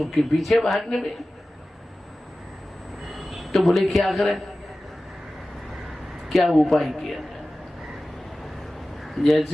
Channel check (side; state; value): both; normal; correlation 0.96